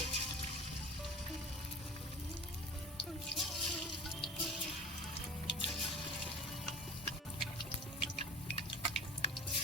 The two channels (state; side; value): normal; both; correlation 0.38